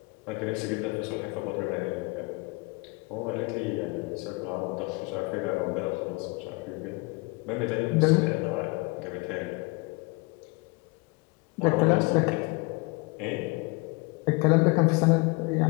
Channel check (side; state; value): right; quieter; 26.9 dB